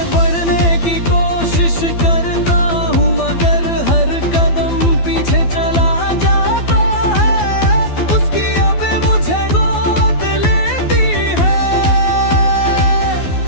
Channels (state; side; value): late; right; 12 ms